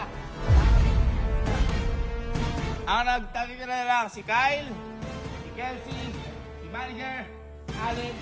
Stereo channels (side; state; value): both; identical; correlation 1.00